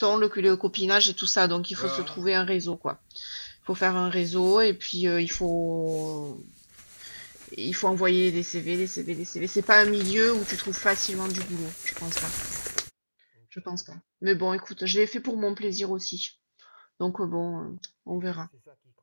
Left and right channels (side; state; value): both; inverted; correlation -1.00